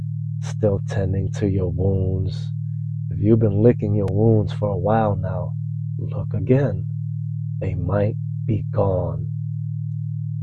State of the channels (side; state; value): both; identical; correlation 1.00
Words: still tending to your wounds. If you've been licking your wounds for a while now, look again. They might be gone.